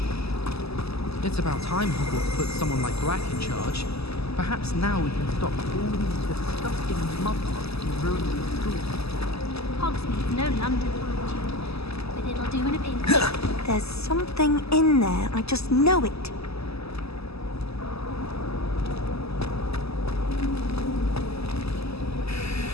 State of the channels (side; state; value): right; late; 0.79 ms